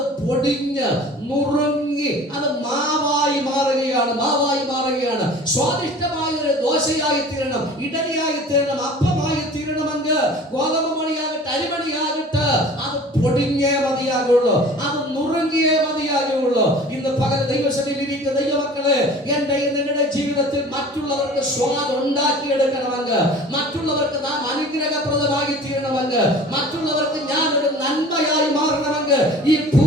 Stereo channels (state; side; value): normal; both; correlation 0.43